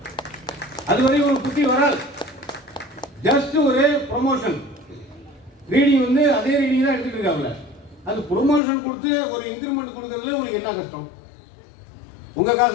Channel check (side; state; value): right; drops out; at 8.6 s